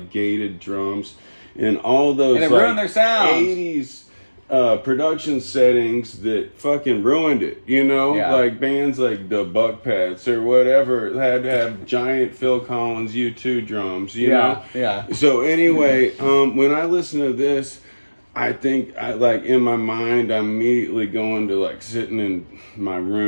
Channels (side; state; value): both; inverted; correlation -1.00